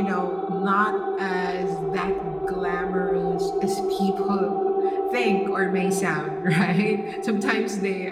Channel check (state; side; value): identical; both; correlation 1.00